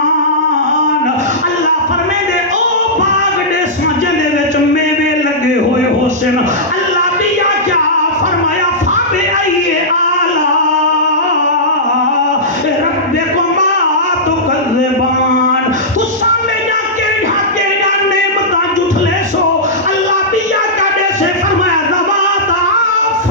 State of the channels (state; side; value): normal; both; correlation -0.13